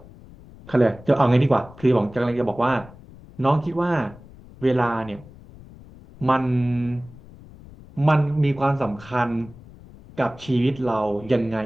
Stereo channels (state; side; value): noise; left; rumble, 20 dB below the sound